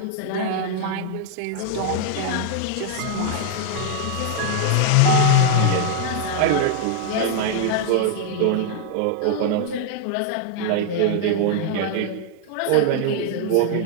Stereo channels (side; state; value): both; different; correlation 0.00